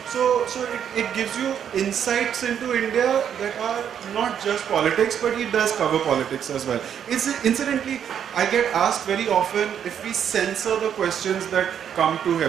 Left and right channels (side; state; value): left; quieter; 8.7 dB